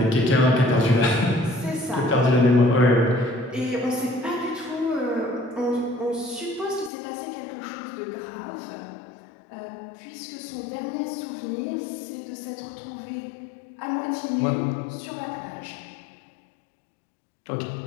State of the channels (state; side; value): drops out; right; at 6.9 s